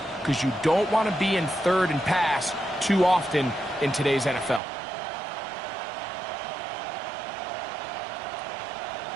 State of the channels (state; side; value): drops out; left; at 4.6 s